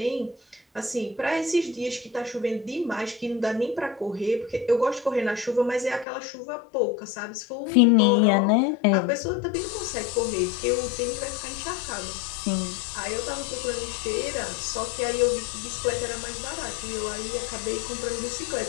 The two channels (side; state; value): right; drops out; at 6.1 s